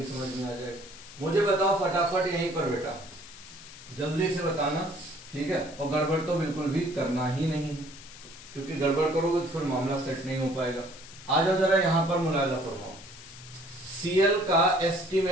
समझ में आ जाएगा। मुझे बताओ फटाफट यहीं पर बेटा, जल्दी से बताना। ठीक है, और गड़बड़ तो बिल्कुल भी करना ही नहीं है, क्योंकि गड़बड़ करोगे तो फिर मामला सेट नहीं हो पाएगा। आ जाओ जरा यहां पर मुलायदा फरमाओ। Cl का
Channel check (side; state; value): left; noise; hiss, 17 dB below the sound